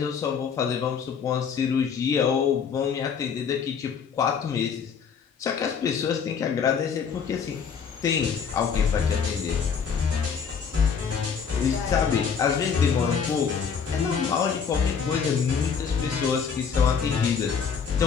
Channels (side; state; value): right; quieter; 6.5 dB